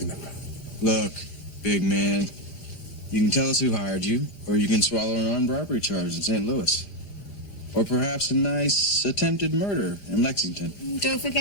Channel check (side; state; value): right; late; 4.9 ms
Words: about. Look, big man, you can tell us who hired you, or you can swallow an armed robbery charge in St. Louis. Or perhaps a nice attempted murder in Lexington. Don't